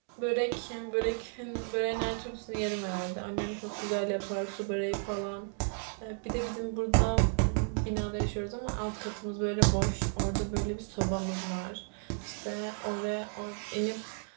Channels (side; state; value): left; silent; 56 dB below the other